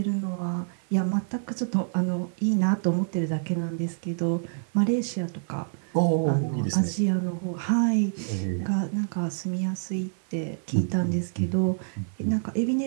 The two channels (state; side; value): silent; left; digital silence